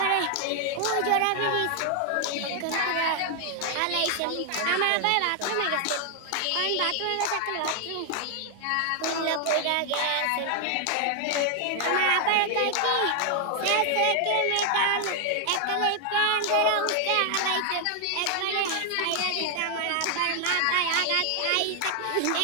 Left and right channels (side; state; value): both; different; correlation 0.00